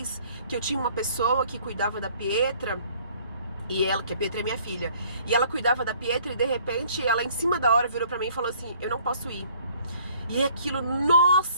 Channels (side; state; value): both; inverted; correlation -0.58